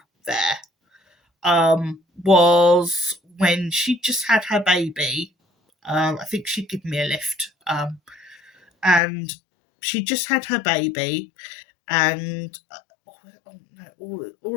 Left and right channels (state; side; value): drops out; right; at 9.0 s